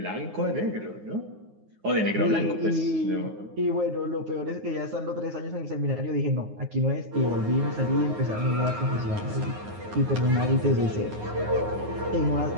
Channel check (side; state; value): left; late; 9.6 ms